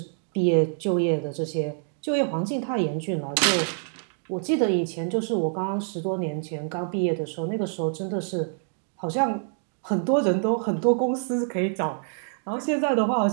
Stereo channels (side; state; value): left; silent; digital silence